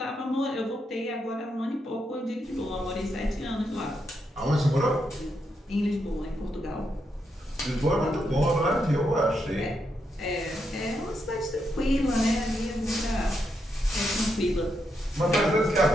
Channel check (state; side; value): normal; both; correlation 0.82